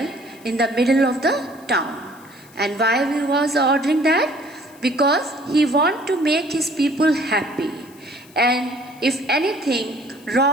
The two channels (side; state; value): left; noise; hiss, 26 dB below the sound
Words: in the middle of the town. And why he was ordering that? Because he wanted to make his people happy. And if anything